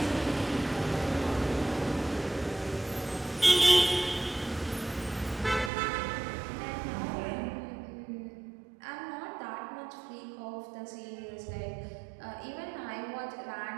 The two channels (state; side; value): drops out; left; at 5.7 s